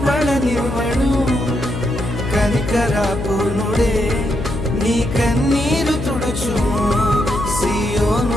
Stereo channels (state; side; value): noise; left; hum, 6 dB below the sound